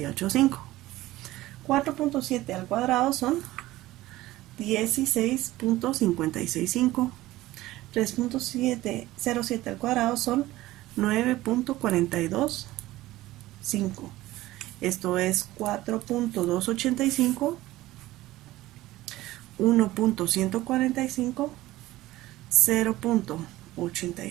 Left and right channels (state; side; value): quieter; left; 16.9 dB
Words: 4.7 al cuadrado son 16.565. 3.07 al cuadrado son 9.425. Esto es 4.285, 1.145,